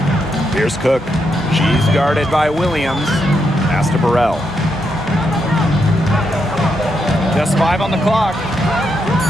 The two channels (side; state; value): both; normal; correlation 0.81